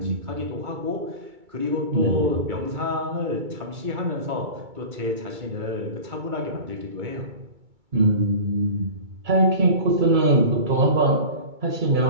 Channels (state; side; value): late; left; 2.2 ms